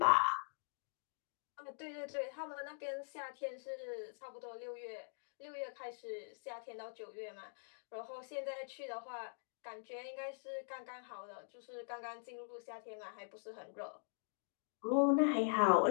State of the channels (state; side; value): silent; right; digital silence